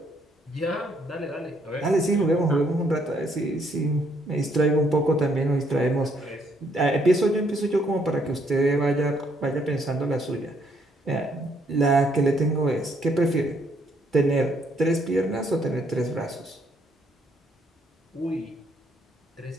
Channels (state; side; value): normal; both; correlation 0.70